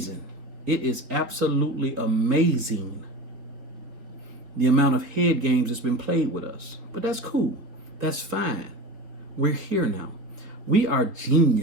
It is absolutely amazing the amount of head games that's been played with us. But that's cool. That's fine. We're here now. We are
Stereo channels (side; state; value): left; late; 4.7 ms